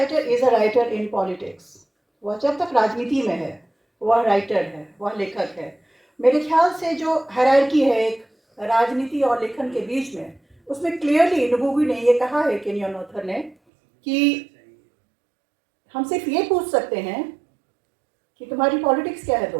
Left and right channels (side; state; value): left; drops out; at 13.6 s